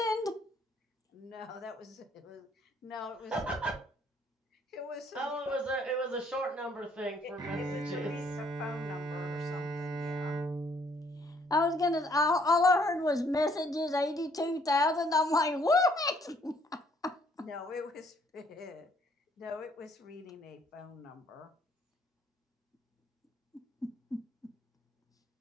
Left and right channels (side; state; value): both; normal; correlation 0.65